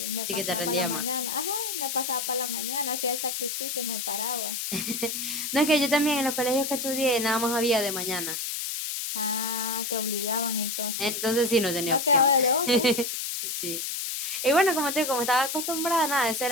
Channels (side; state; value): left; noise; hiss, 3 dB below the sound